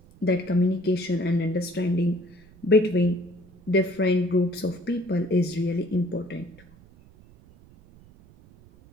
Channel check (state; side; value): noise; right; rumble, 25 dB below the sound